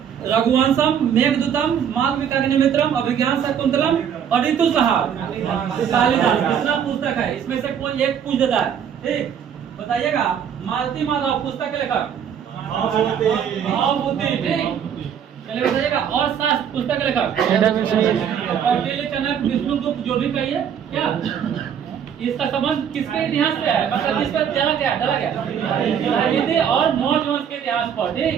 रघुवंशम, मेघदूतम, मालविकाग्निमित्रम, अभिज्ञान शाकुंतलम और ऋतुसंहार कालिदास कितना पुस्तक है? इसमें से कोई एक पूछ देता है, ठीक। बताइएगा, मालती माधव पुस्तक के लेखक भावभूति, ठीक। चलिए बताइएगा, और शास्त्र पुस्तक के लेखक कौटिल्य, चनक, विष्णुगुप्त, जो भी कहिए। क्या इसका संबंध किसके इतिहास से है? मतलब किस पर डाला गया और मौर्य वंश के इतिहास पर, ठीक।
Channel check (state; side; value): quieter; left; 8.3 dB